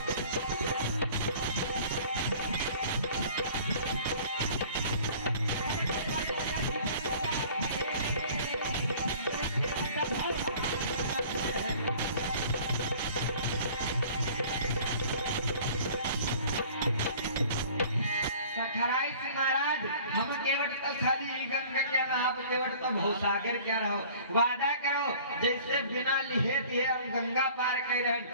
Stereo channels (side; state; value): both; inverted; correlation -0.48